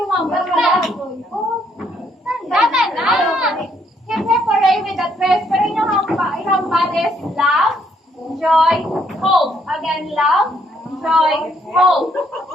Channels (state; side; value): normal; both; correlation 0.70